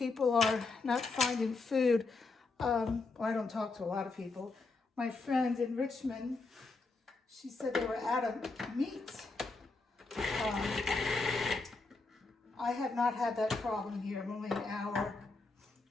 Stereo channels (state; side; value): quieter; right; 3.8 dB